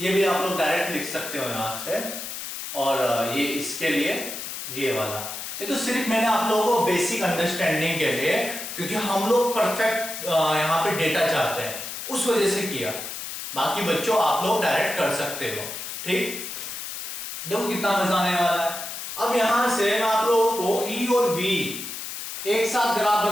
भी आप लोग डायरेक्ट लिख सकते हो यहां से। और ये इसके लिए ये वाला, ये तो सिर्फ मैंने आप लोगों को बेसिक अंडरस्टैंडिंग के लिए, क्योंकि हम लोग परफेक्ट यहाँ पे डेटा चाहते हैं, उस वजह से किया। बाकी बच्चों आप लोग डायरेक्ट कर सकते हो। ठीक, देखो कितना मजा आने वाला है। अब यहां से मैं आप लोगों को E और V एक साथ ग्राफ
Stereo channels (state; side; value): noise; left; hiss, 7 dB below the sound